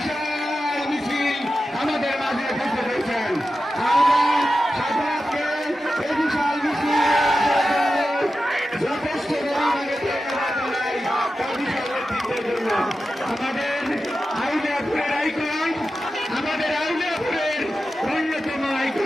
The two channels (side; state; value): both; normal; correlation 0.92